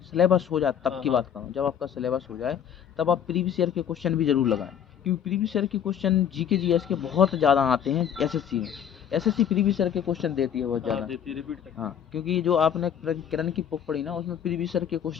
सिलेबस हो जाए हैं। तब हाँ की हाँ बात करूँ, जब आपका सिलेबस हो जाए तब आप प्रीवियस ईयर के क्वेश्चन भी जरूर लगाएं, क्योंकि प्रीवियस ईयर के क्वेश्चन GK GS के बहुत ज़्यादा आते हैं SSC में। SSC प्रीवियस ईयर के क्वेश्चन देती है बहुत हाँ, ज़्यादा। देती है, रिपीट करती हाँ, है। क्योंकि जो आपने किरण की बुक पढ़ी ना, उसमें प्रीवियस ईयर के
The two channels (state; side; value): quieter; right; 8.9 dB